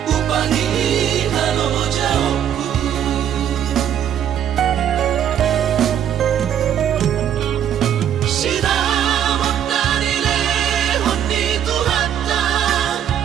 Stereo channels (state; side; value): quieter; left; 9.8 dB